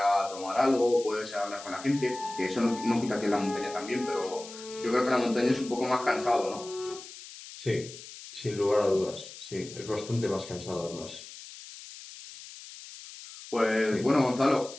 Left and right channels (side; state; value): left; noise; hiss, 15 dB below the sound